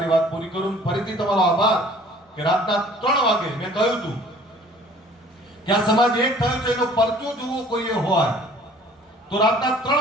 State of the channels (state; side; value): normal; both; correlation 0.52